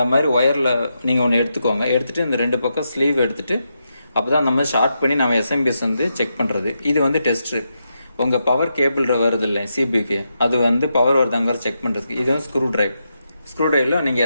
மாதிரி ஒயரில் நீங்கள் ஒன்று எடுத்துக்கோங்க. எடுத்துட்டு இந்த 2 பக்கம் ஸ்லீவ் எடுத்துட்டு அப்போதான் நம்ம ஷார்ட் பண்ணி நம்ம எஸ்எம்பிஎஸ் வந்து செக் பண்ணுறது. இது வந்து டெஸ்ட்டு. உங்கள் பவர் கேபிள் வருது இல்லை சிபிக்கு, அது வந்து பவர் வருதாங்கிற செக் பண்ணுறதுக்கு. இது வந்து ஸ்க்ரூ டிரைவ். ஸ்க்ரூ டிரைவில் நீங்கள்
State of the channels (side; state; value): both; inverted; correlation -0.85